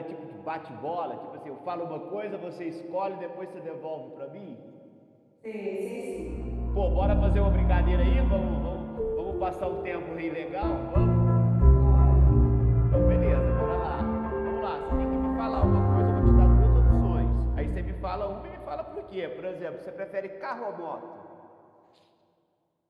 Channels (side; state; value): both; identical; correlation 1.00